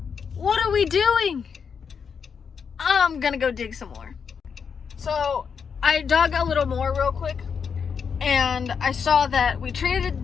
what are we doing? I'm gonna go dig some more. So, I dug a little more real quick, and I saw that we traded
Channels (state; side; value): quieter; right; 6.4 dB